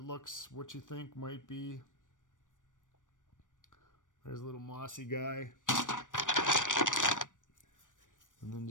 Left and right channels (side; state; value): right; late; 0.87 ms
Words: looks what you think might be. There's a little mossy guy. And then